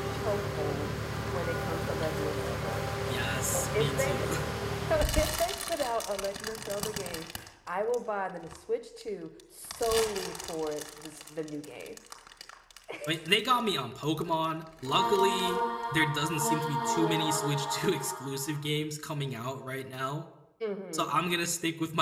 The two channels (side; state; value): both; identical; correlation 1.00